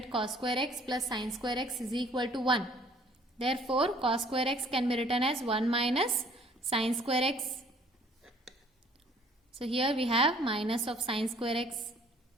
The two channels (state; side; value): normal; both; correlation 0.57